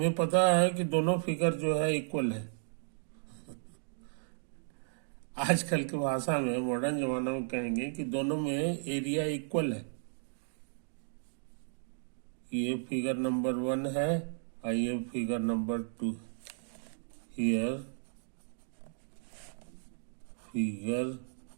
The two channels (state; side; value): silent; left; digital silence